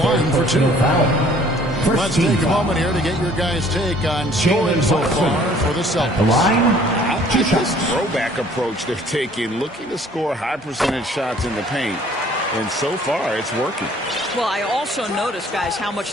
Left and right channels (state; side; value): normal; both; correlation 0.56